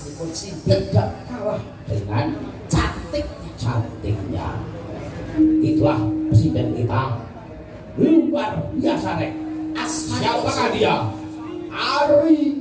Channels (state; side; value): identical; both; correlation 1.00